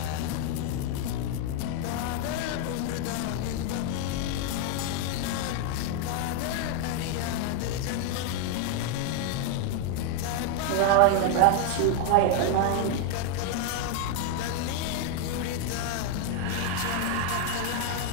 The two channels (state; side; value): different; both; correlation 0.01